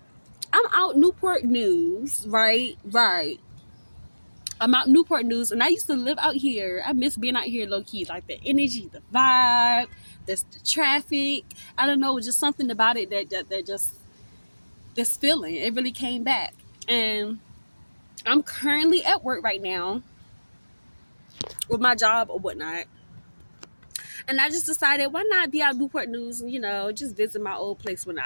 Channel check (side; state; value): both; inverted; correlation -1.00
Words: I'm out Newport News, right? Right. I'm out Newport News, and I used to live out here. I miss being out here low-key. Like the energy, the vibe, the traffic. I don't know, just something about it that just, this feeling, it really came back. And I'm currently at work right now with my job or whatnot. And I just decided, why not be out Newport News and, just visit my old place when